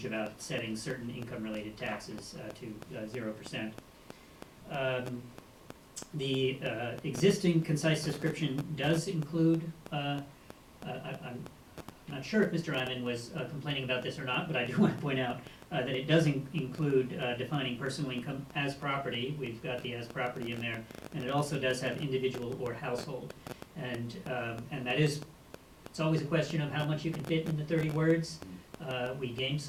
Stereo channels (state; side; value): identical; both; correlation 1.00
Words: about setting certain income-related taxes to 0%. The existing concise description does include, I'm not sure if Mr. Eyman was complaining about this or not, but I do want to point out that it does include defining personal income as property. We've got the as property in there, and it also does have individual or household. And that is, it's always a question of how much you can fit into 30 words. We gained